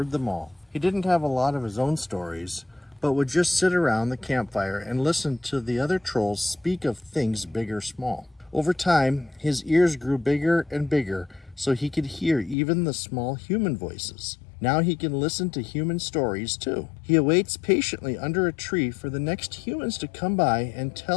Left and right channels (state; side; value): drops out; right; at 12.6 s